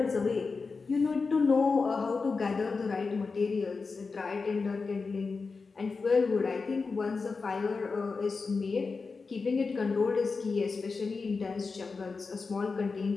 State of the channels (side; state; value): right; quieter; 4.5 dB